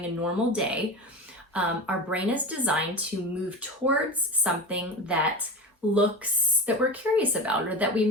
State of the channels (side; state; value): both; normal; correlation 0.27